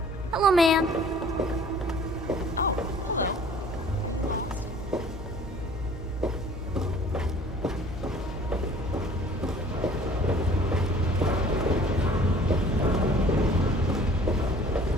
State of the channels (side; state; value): both; normal; correlation 0.51